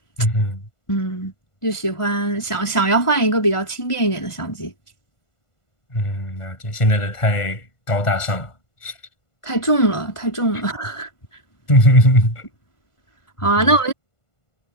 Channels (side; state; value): right; late; 1.5 ms